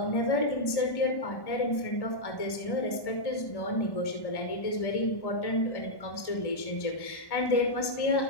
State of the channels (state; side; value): late; right; 1.1 ms